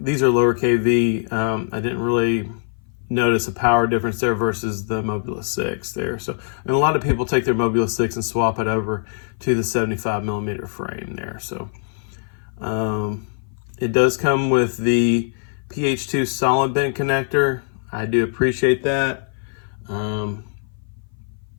are lower kV, I didn't really notice a power difference there versus the Moblite6 there. So, and a lot of people take their Moblite6 and swap it over to the 75mm frame there. So it does come with the PH2 solid bent connector. I do appreciate that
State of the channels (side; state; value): right; silent; 57 dB below the other